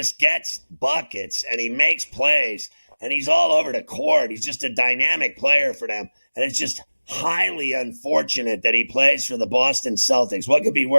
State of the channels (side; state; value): both; inverted; correlation -1.00